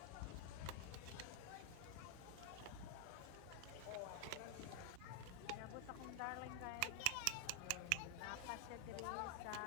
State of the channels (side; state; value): both; different; correlation 0.00